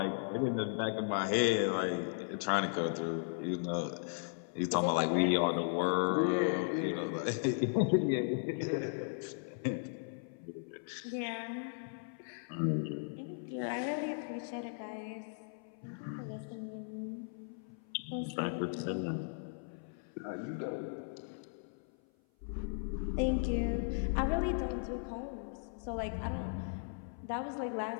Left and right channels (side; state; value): right; silent; 53 dB below the other